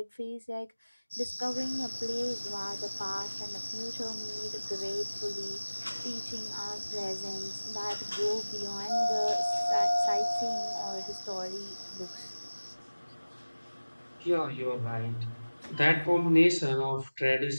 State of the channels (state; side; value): inverted; both; correlation -1.00